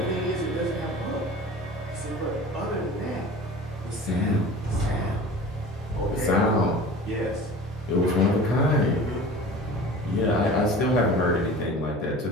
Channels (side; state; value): both; normal; correlation 0.39